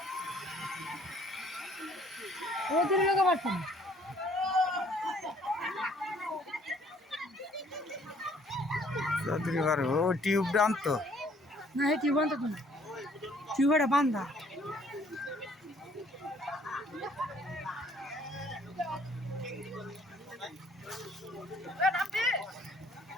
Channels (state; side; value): normal; both; correlation 0.60